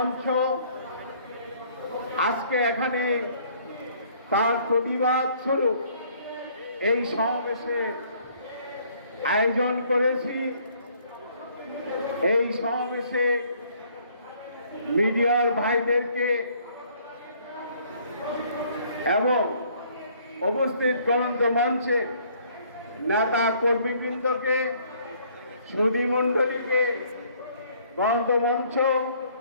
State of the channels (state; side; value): inverted; both; correlation -0.61